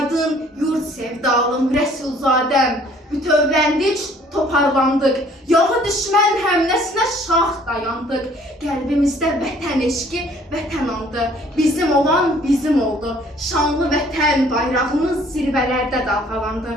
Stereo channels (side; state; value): both; normal; correlation 0.58